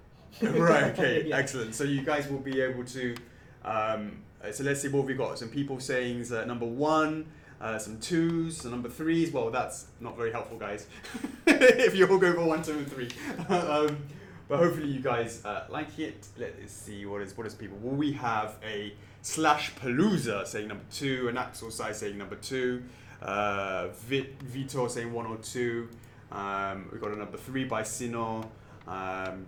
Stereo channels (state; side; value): identical; both; correlation 1.00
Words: Right. Okay. Yeah. Excellent. So you guys will be able to. So let's see what we got. Some people saying number 1. Some 2s, some number 3s. Well, that's not very helpful, guys. If you all go for 1, 2, and 3. But hopefully you guys like it. Let's see what is people. Well, we have a /Palooza saying number 2, an Axel Sai saying number 2, Vitor saying 1 or 2. We got a number 3 by Sino.